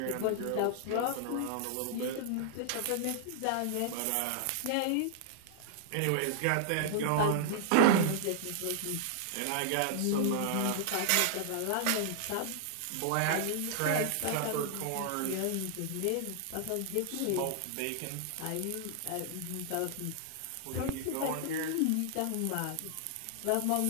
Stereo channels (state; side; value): different; both; correlation 0.00